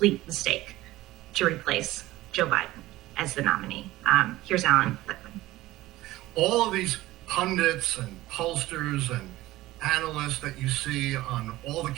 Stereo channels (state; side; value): quieter; left; 17.1 dB